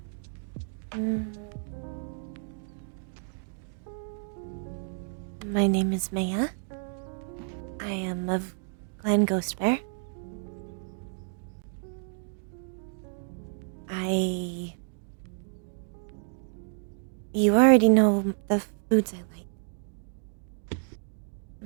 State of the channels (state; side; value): silent; left; digital silence